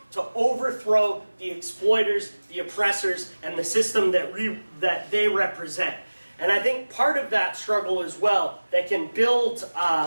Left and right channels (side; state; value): both; inverted; correlation -1.00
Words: to overthrow the exploiters, the oppressors, and the system that they represent. And I think part of that struggle as well that can build